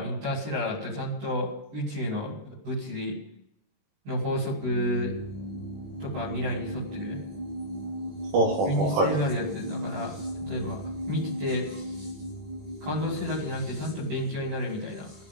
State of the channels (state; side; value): late; left; 20 ms